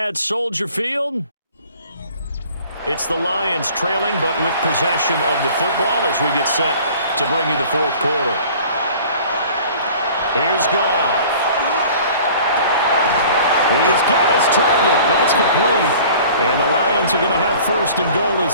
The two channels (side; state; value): both; inverted; correlation -0.48